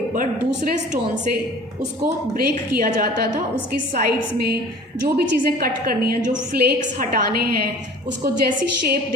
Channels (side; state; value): both; normal; correlation 0.45